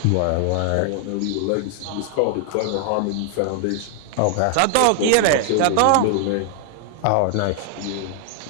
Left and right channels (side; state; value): both; different; correlation 0.00